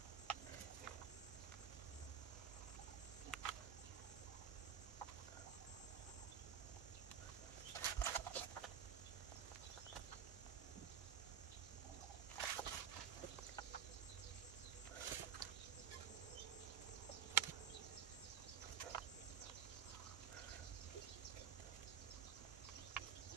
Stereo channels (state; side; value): quieter; left; 8.2 dB